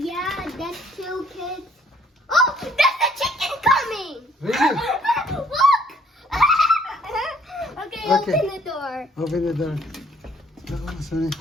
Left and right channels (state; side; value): normal; both; correlation 0.62